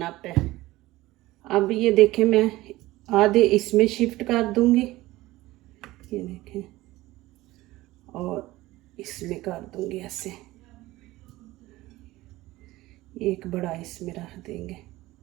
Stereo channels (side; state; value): left; quieter; 18.0 dB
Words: अप है। अब ये देखें, मैं आधे इसमें शिफ्ट कर दूंगी। ये देखें, और इसमें कर दूंगी ऐसे। एक बड़ा इसमें रख देंगे